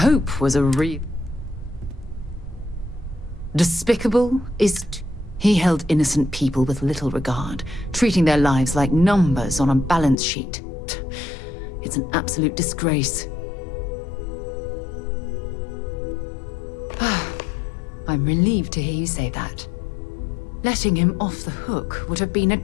was a despicable is... He held innocent people with little regard, treating their lives like numbers on a balance sheet. It's an absolute disgrace. I'm relieved to hear you say that. Letting him off the hook would have been a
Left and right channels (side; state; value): right; drops out; at 10.2 s